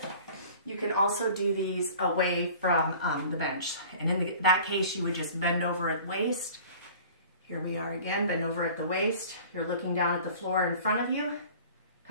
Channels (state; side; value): inverted; both; correlation -0.45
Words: you can also do these away from the bench. And in that case, you would just bend over at waist. Here we are again, bend over at the waist. You're looking down at the floor in front of you.